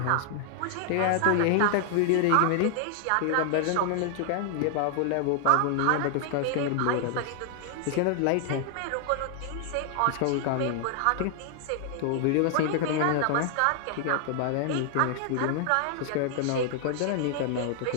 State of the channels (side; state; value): both; different; correlation 0.00